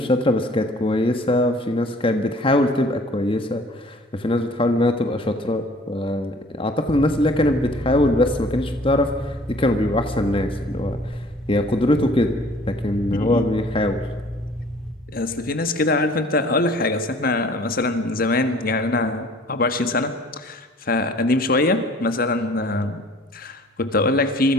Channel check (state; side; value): normal; both; correlation 0.52